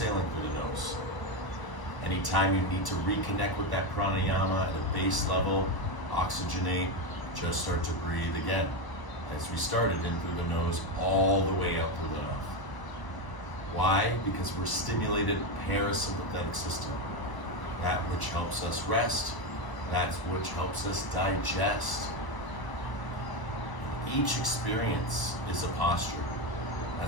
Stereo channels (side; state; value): right; late; 1.0 ms